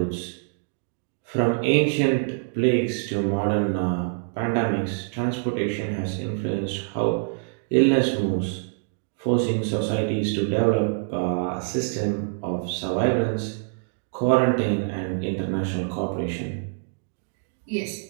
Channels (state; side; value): silent; left; digital silence